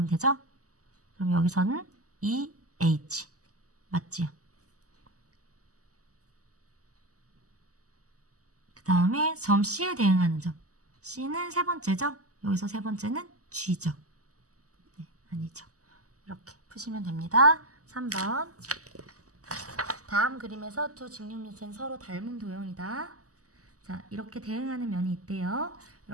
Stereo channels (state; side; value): late; left; 0.66 ms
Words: 되죠? 그럼 여기서는 EH. 맞지요? 그 다음에 점 C에 대응하는 점. C는 세 번째죠? 여기서 세 번째는 G죠. 네, 아니죠. 이렇게 푸시면 됩니다. 3번. 다음 그림에서 두 직육면체는 서로 닮은 도형이다. 자, 이렇게 대응하는 면이 있대요.